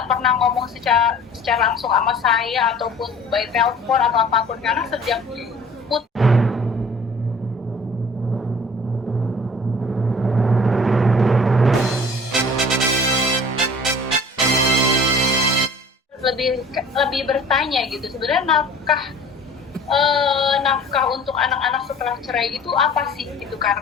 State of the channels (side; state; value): both; normal; correlation 0.46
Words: pernah ngomong secara langsung sama saya ataupun by telepon atau apapun, karena sejak lebih bertanya gitu, sebenarnya nafkah untuk anak-anak setelah cerai itu apa sih gitu,